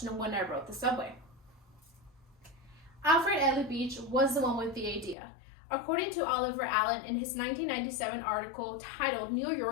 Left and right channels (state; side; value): drops out; right; at 5.2 s